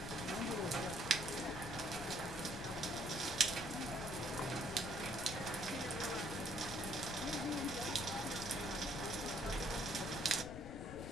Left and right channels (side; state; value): left; noise; rumble, 10 dB below the sound